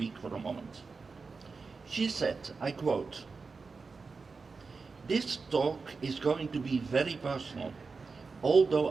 for a moment. She said, I quote, "This talk is going to be very personal, although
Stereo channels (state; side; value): quieter; left; 4.5 dB